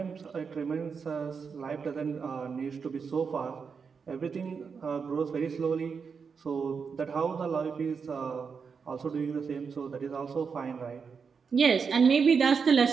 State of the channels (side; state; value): left; quieter; 5.8 dB